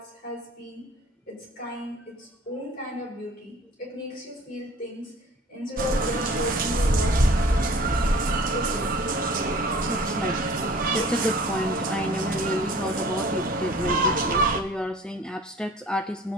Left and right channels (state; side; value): normal; both; correlation 0.47